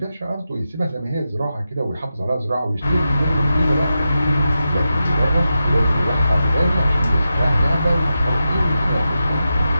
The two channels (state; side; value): inverted; both; correlation -0.90